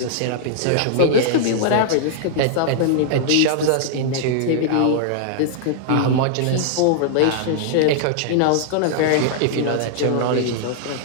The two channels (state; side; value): different; both; correlation -0.01